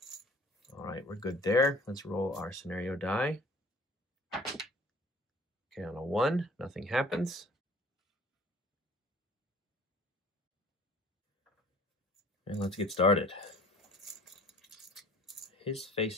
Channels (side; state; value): both; normal; correlation 0.50